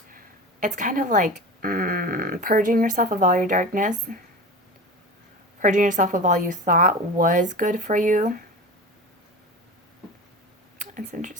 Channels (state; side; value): normal; both; correlation 0.31